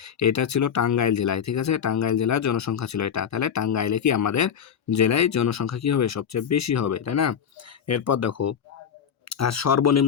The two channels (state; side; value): quieter; right; 7.9 dB